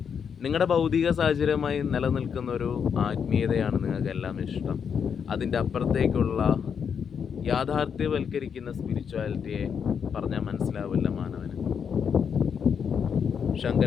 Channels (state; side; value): quieter; right; 7.1 dB